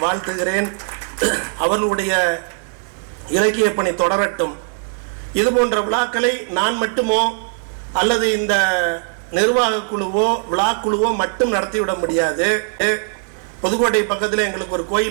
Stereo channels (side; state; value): left; silent; 64 dB below the other